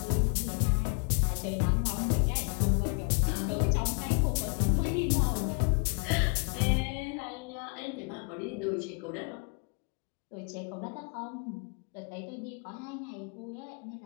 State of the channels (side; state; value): right; quieter; 38.7 dB